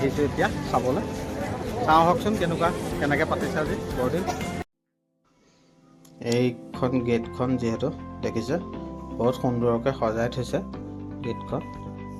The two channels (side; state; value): both; identical; correlation 1.00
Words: এতিয়া চাবলৈ। চাওঁ আহকচোন কেনেকৈ পাতিছে আজি বৰদিন। এইখন গেটখন যিহেতু দেখিছে, বহুত সুন্দৰকৈ সজাই থৈছে গেটখন।